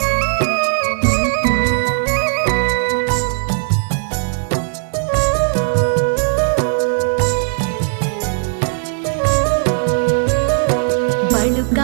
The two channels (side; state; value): left; silent; 68 dB below the other